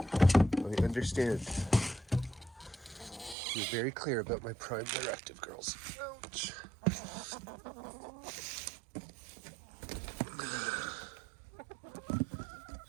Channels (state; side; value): drops out; left; at 3.4 s